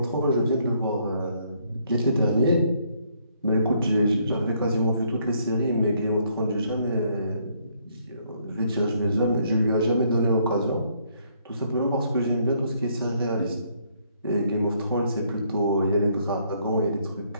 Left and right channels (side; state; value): both; inverted; correlation -0.69